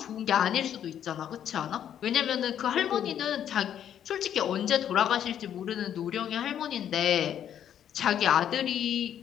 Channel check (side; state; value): right; quieter; 9.8 dB